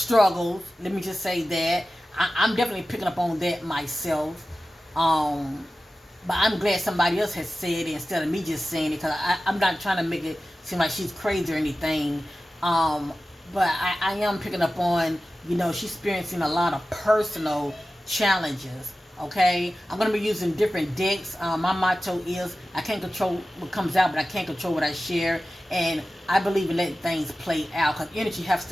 Let me just say that. I'm definitely picking up on that myself. But I'm glad somebody else has said it instead of me just saying it, because I'm not trying to make it seem like she's crazy or anything. But I am picking up on, she's experiencing a lot of personal challenges. Okay, I'm going to be using different decks. My motto is, I can't control what comes out, but I can't control what I share. And I believe in letting things play out, because energy has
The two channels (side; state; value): both; normal; correlation 0.95